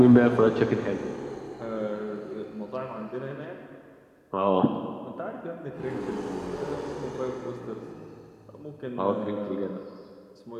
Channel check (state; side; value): identical; both; correlation 1.00